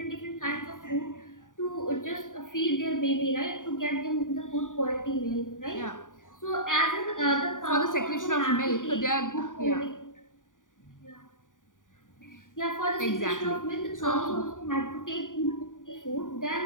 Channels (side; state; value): right; late; 0.88 ms